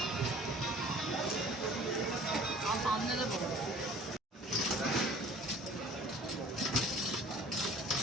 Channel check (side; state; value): both; normal; correlation 0.49